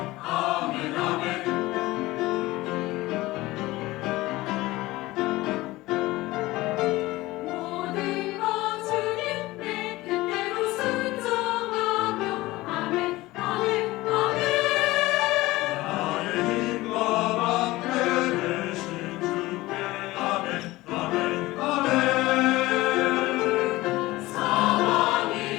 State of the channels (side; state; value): right; quieter; 18.9 dB